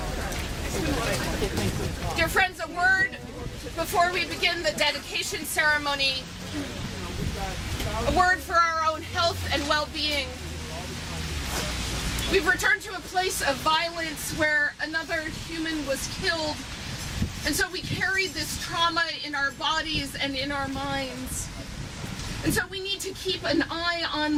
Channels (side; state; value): both; identical; correlation 1.00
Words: Dear friends, a word before we begin the dedication ceremony. A word for our own health and well-being. We've returned to a place of violence where another human was killed, and so we carry this trauma in our bodies and in our minds. And so we need to keep an eye